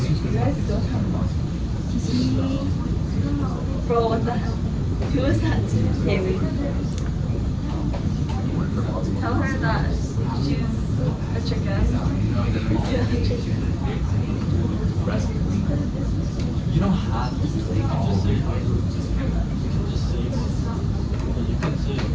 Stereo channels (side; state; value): both; identical; correlation 1.00